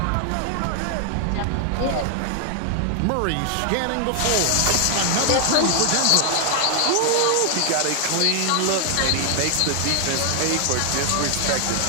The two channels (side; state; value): both; different; correlation 0.00